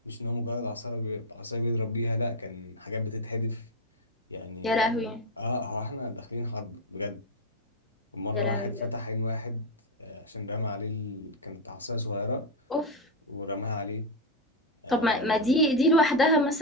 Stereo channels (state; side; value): normal; both; correlation 0.05